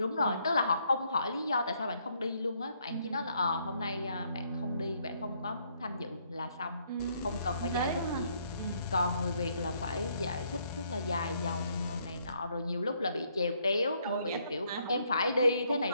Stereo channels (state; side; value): inverted; both; correlation -0.71